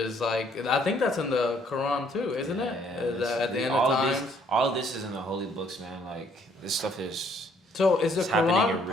like, I think that's in the Quran too, isn't it? At the end of times. All of this is in the holy books, man. Like this stuff is. So is the happening in Quran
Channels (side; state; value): both; normal; correlation 0.65